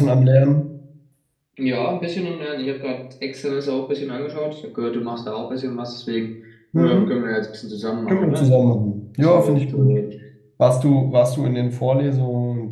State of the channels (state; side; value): identical; both; correlation 1.00